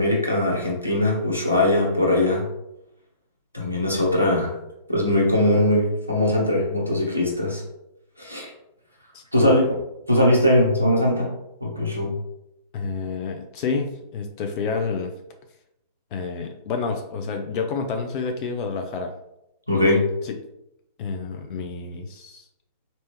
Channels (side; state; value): both; inverted; correlation -0.55